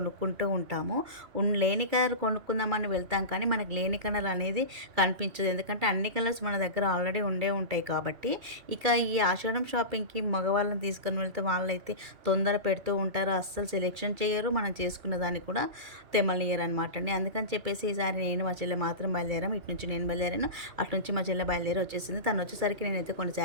ఉంటాము. లేని కలర్ కొనుక్కుందామని వెళ్తాం, కానీ మనకు లేని కలర్ అనేది కనిపించదు. ఎందుకంటే అన్ని కలర్స్ మన దగ్గర ఆల్రెడీ ఉంటాయి కాబట్టి. ఇక ఈ ఆషాఢం షాపింగ్కి మగవాళ్ళని తీసుకొని వెళ్తే వాళ్ళైతే తొందర పెడుతూ ఉంటారు, అస్సలు సెలెక్షన్ చేయరు, మనం చేసుకున్న దాన్ని కూడా తెమ్మనియరు అనమాట అండి. అందుకని చెప్పేసి ఈసారి నేను మా చెల్లె మాత్రం బయలుదేరాము. ఇటు నుంచి నేను బయలుదేరాను, అటు నుంచి మా చెల్లె బయలుదేరి వచ్చేసింది. తను వచ్చేసరికి నేనైతే కొన్ని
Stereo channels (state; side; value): late; left; 2.3 ms